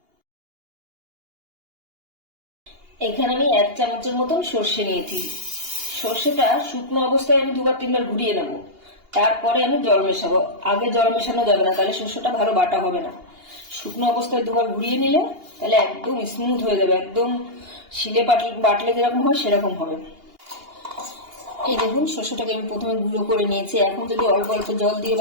এখানে আমি 1 চামচের মতন সর্ষে নিয়েছি। সর্ষেটা শুকনো অবস্থায় আমি 2-3 বার ঘুরিয়ে নেব, তারপরে আমি জল মেশাবো। আগে জল মেশানো যাবে না, তাহলে সর্ষেটা ভালো বাটা হবে না। শুকনো অবস্থায় 2 বার ঘুরিয়ে নিলে তাহলে একদম স্মুথ হয়ে যাবে, একদম শিলে বাটলে যেরকম হয় সেরকম হবে। এই দেখুন, সর্ষেটাকে আমি প্রথমে গুঁড়ো করে নিয়েছি। এখন যদি অল্প অল্প জল দিয়ে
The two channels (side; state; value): left; late; 2.8 ms